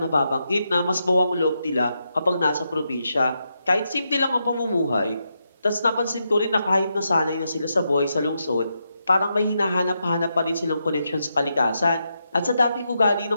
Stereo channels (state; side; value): inverted; both; correlation -0.84